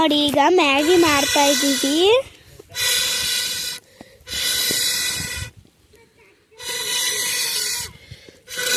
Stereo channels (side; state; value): both; identical; correlation 1.00